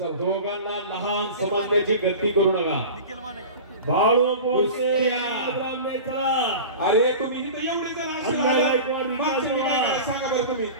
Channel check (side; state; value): both; inverted; correlation -0.34